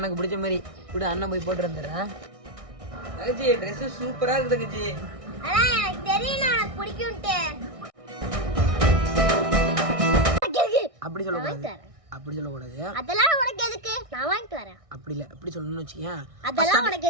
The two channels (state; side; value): late; left; 1.6 ms